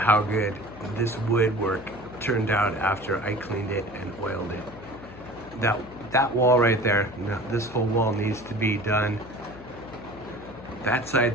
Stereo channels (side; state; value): left; noise; hum, 17 dB below the sound